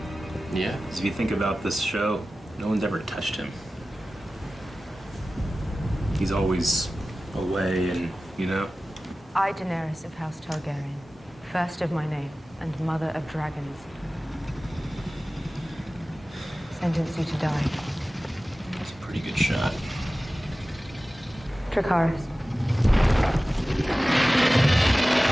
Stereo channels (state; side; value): normal; both; correlation 0.96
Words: Yeah. Because if you think about this show, no one's ever touched him. He's always away and, you know. I, Daenerys of House Targaryen, first of my name and mother of dragons, sentence you to die. That's a pretty good shot. Dracarys.